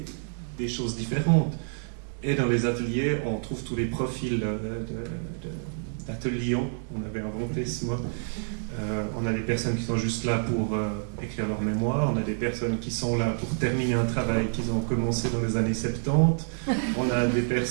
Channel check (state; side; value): silent; left; digital silence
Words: choses différentes. Et dans les ateliers, on trouve tous les profils d'ateliers. On avait inventé ce mot. On a des personnes qui sont juste là pour écrire leur mémoire. On a des personnes qui sont là pour terminer un travail qu'ils ont commencé dans les années 70. On a des